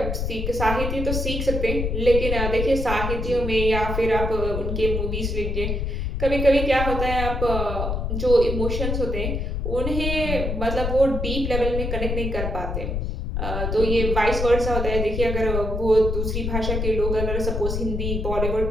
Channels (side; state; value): left; noise; rumble, 2 dB below the sound